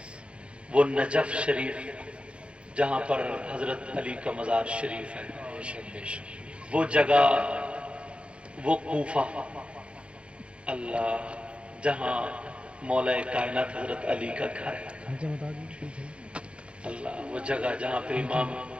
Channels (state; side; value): late; left; 0.058 ms